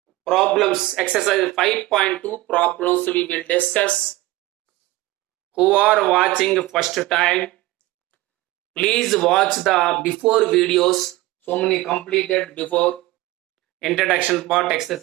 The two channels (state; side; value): quieter; left; 18.6 dB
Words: problems. Exercise 5.2 problems we will discuss. Who are watching first time, please watch the before videos. So many completed before. Introduction part,